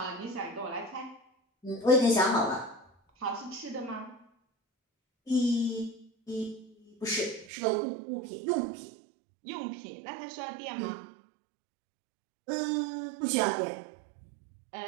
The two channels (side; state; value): left; drops out; at 7.5 s